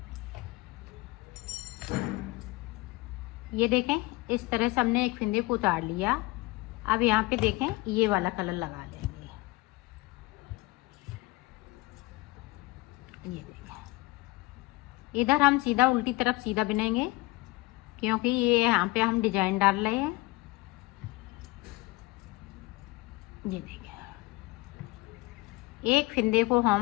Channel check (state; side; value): quieter; right; 21.2 dB